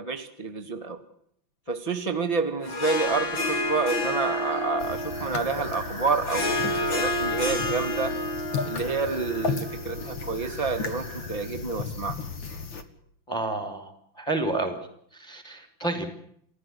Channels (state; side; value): late; right; 5.9 ms